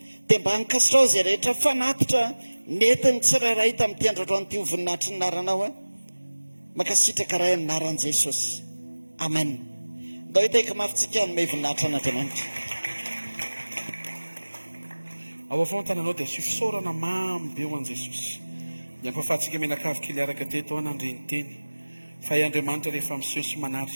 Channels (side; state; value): both; inverted; correlation -1.00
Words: Dia mba hankasitrao izay rehetra fanatitra netiny tsirairay tamin'ity androandroany ity voninahitra naranao a, mankasitraka ray anaran'i Jesosy. Amen. Ndao hitaika mafitsika hanome voninahitra an'Andriamanitra. ao avao tananao dia asio fisaorana mamy be ho an' Jesosy. Ny ampahafahantsika menakavy kely araka teto anandreny teny fa i Andriamanitra rehefa miseho sy